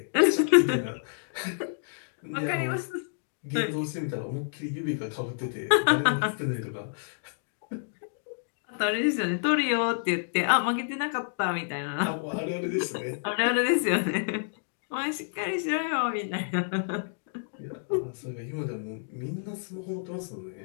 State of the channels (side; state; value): right; silent; digital silence